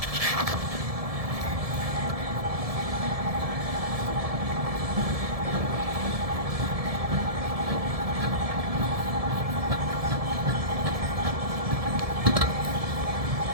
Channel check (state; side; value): late; left; 1.7 ms